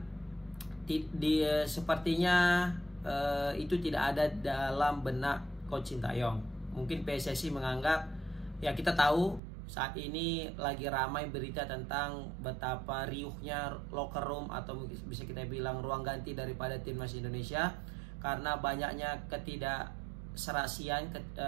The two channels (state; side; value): drops out; left; at 9.4 s